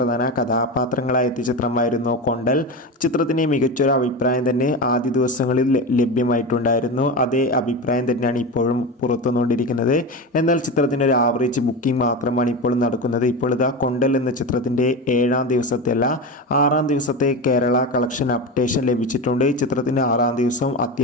കഥാപാത്രങ്ങളായ എത്തിയ ചിത്രമായിരുന്നു കൊണ്ടൽ. ചിത്രത്തിന് മികച്ചൊരു അഭിപ്രായം തന്നെ ആദ്യ ദിവസങ്ങളിൽ ലഭ്യമായിട്ടുണ്ടായിരുന്നു. അതേ അഭിപ്രായം തന്നെയാണ് ഇപ്പോഴും പുറത്തുവന്നുകൊണ്ടിരിക്കുന്നത്. എന്നാൽ ചിത്രത്തിൻ്റെ ഒരു ആവറേജ് ബുക്കിംഗ് മാത്രമാണ് ഇപ്പോൾ നടക്കുന്നത്. ഇപ്പോൾ ഇതാ കൊണ്ടൽ എന്ന ചിത്രത്തിൻ്റെ 7ാം ദിവസത്തെ അല്ല 6ാം ദിവസത്തെ കേരള കളക്ഷൻ അപ്ഡേഷൻ ലഭിച്ചിട്ടുണ്ട്. ചിത്രത്തിൻ്റെ 6ാം ദിവസം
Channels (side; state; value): both; normal; correlation 0.22